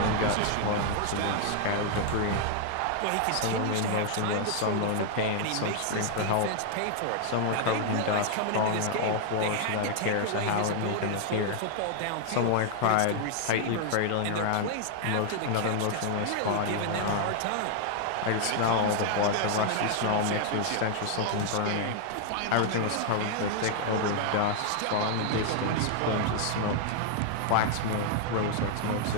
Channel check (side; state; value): both; different; correlation 0.00